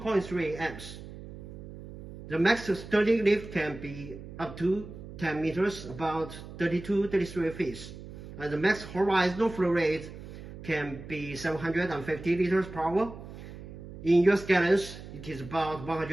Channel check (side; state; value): right; noise; hum, 13 dB below the sound